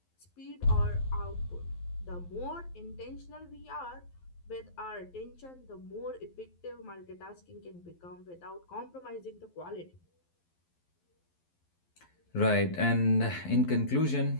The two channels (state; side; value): late; right; 12 ms